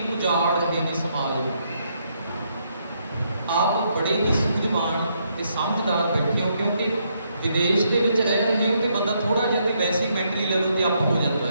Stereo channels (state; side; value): inverted; both; correlation -0.75